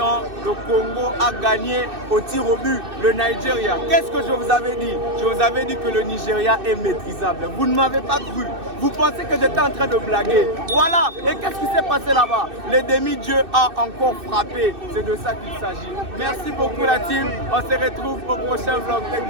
Le Congo a gagné au tir au but le Nigeria. Qu'est-ce que je vous avais dit? Je vous avais dit que le Nigeria est maîtrisable. Vous ne m'avez pas cru. Vous pensez que j'étais en train de blaguer. Voilà. Et qu'est-ce qui s'est passé là-bas? Les demi-dieux a encore frappé. C'est de ça qu'il s'agit. Merci beaucoup la team. On se retrouve au prochain vlog. Thank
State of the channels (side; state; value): left; late; 2.6 ms